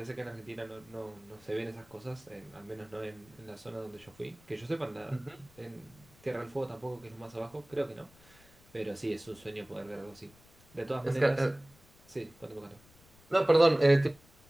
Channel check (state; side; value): noise; left; rumble, 27 dB below the sound